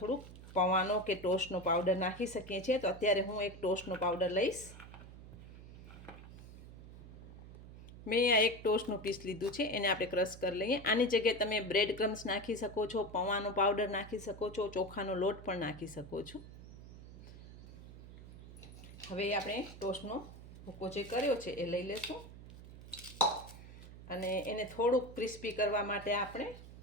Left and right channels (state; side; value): noise; right; hum, 15 dB below the sound